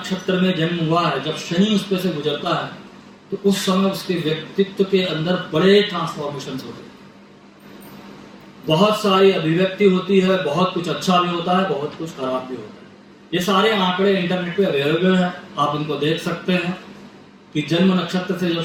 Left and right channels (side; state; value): both; identical; correlation 1.00